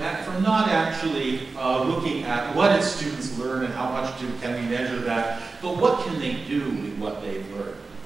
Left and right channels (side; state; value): left; quieter; 3.9 dB